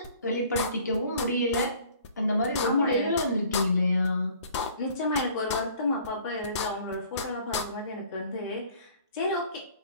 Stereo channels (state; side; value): inverted; both; correlation -0.53